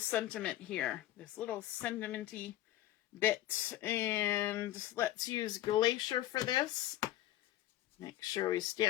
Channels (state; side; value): quieter; right; 14.3 dB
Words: here, this little sentimenty bit, and let's use Glacier for this. Make sure we